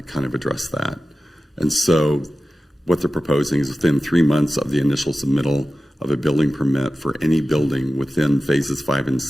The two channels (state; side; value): normal; both; correlation 0.94